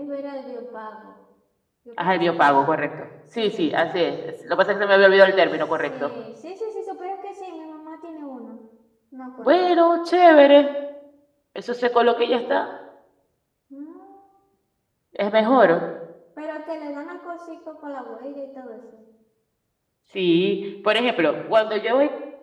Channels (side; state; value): both; identical; correlation 1.00